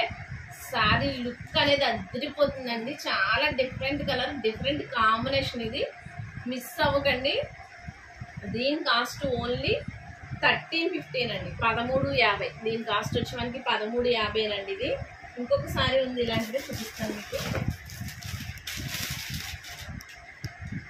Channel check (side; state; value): both; identical; correlation 1.00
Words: సారీ లుక్ అనేది అదిరిపోతుందండి. చాలా డిఫరెంట్ కలర్, డిఫరెంట్ కాంబినేషన్. ఇది మిస్ అవ్వకండి. దీని కాస్ట్ ఓన్లీ 1315 అండి. 1350. దీని కాస్ట్ వచ్చి మనకి 1350 అండి. ఇది ఇంకొక సారీ ఉంది ఇలాంటిది, చూపిస్తాను మీకు.